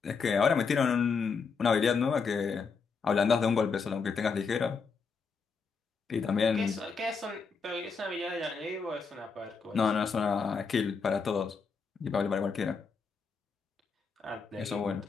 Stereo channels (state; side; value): quieter; right; 5.2 dB